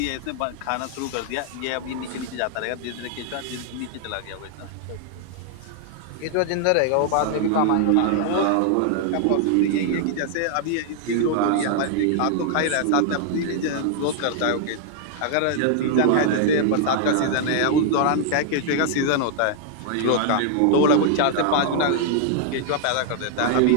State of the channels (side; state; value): both; different; correlation 0.00